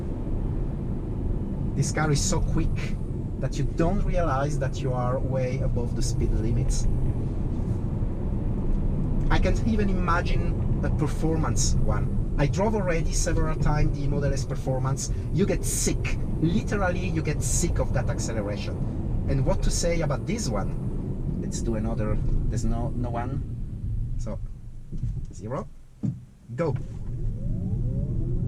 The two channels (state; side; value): identical; both; correlation 1.00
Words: This car is so quick that you don't realize that you are way above the speed limits. I can't even imagine a performance one. I drove already several times the Model S Performance. You get sick. Literally, you get sick of that acceleration. And what to say about this one? Let's do another. There's no one. So, 0. Go.